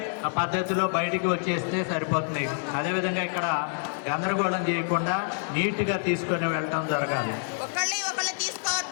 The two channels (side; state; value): right; silent; 60 dB below the other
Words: పద్ధతిలో బయటికి వచ్చేస్తే సరిపోతుంది. అదేవిధంగా ఇక్కడ గందరగోళం చేయకుండా నీట్గా తీసుకొని వెళ్ళటం జరగాలి. ఒకళ్ళు